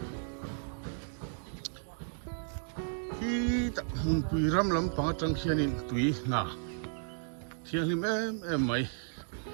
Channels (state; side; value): silent; left; digital silence